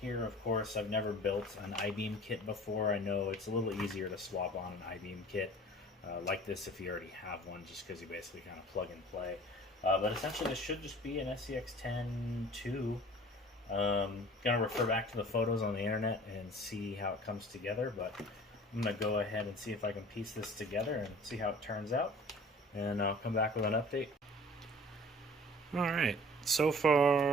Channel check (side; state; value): both; normal; correlation 0.47